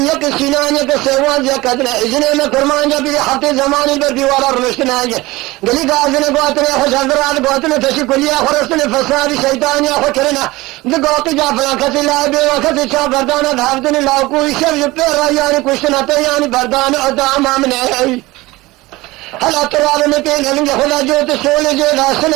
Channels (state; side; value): quieter; left; 20.2 dB